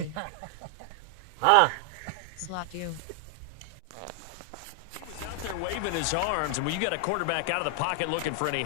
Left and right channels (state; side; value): different; both; correlation 0.00